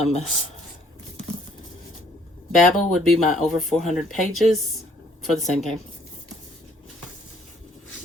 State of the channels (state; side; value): normal; both; correlation 0.62